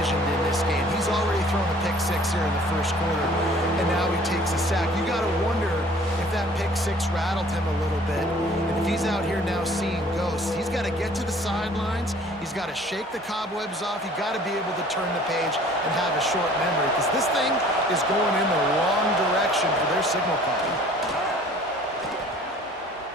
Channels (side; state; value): both; normal; correlation 0.52